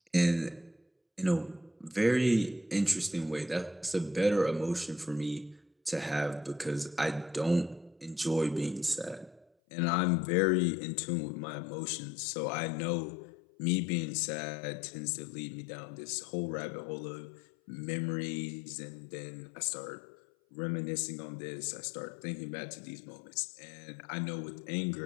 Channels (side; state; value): right; drops out; at 9.5 s